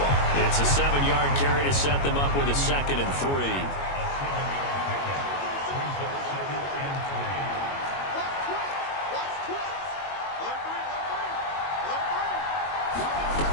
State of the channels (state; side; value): late; right; 21 ms